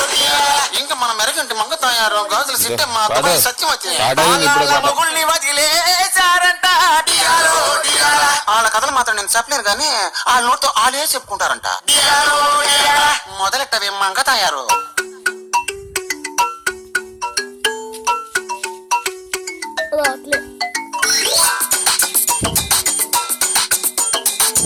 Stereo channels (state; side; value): identical; both; correlation 1.00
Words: ఇంకా మన మెరగంటి మంగ తయారు గాజులు సిట్టమ్మ దుబాయ్ సత్యవతి మొగుల్ని వదిలేశారంట. వాళ్ళ కథలు మాత్రం నేను చెప్పలేను కానీ వాళ్ళ నోటితో వాళ్ళే చెప్పుకుంటారంట. మొదలెట్టవే మంగ తయారు.